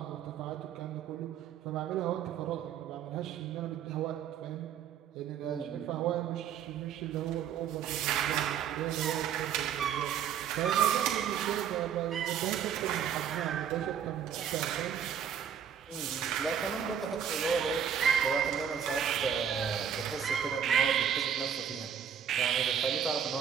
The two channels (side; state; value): left; quieter; 8.4 dB